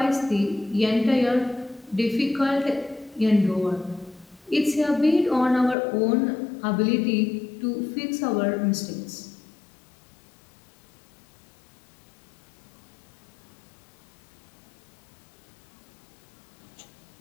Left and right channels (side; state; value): right; drops out; at 5.8 s